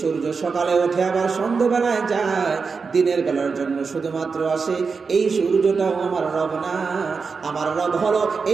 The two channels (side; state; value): left; quieter; 5.0 dB